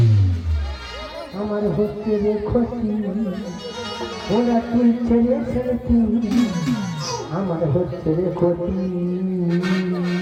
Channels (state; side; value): identical; both; correlation 1.00